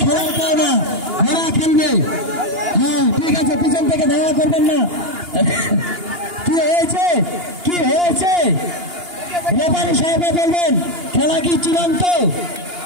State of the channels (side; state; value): left; late; 2.8 ms